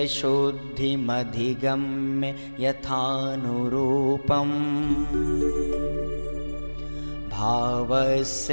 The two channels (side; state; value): both; inverted; correlation -1.00